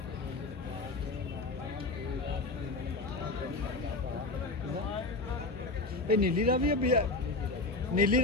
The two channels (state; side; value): quieter; right; 3.2 dB